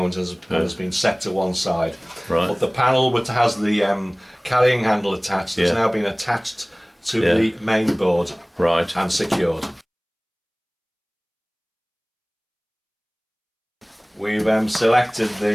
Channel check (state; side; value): identical; both; correlation 1.00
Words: has been set to one side. Right. But the panel which has the carrying handle attached has Yeah. now been attached to Yeah. the main board Right. and secured. We've selected